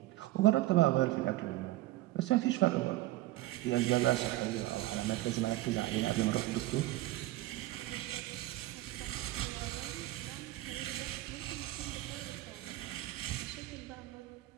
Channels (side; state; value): left; quieter; 16.8 dB